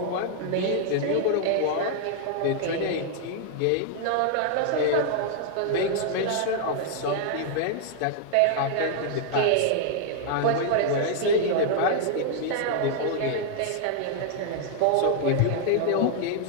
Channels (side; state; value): both; different; correlation 0.00